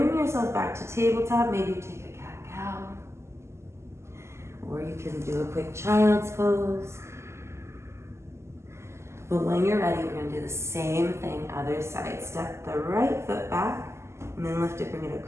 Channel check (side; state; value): left; late; 0.13 ms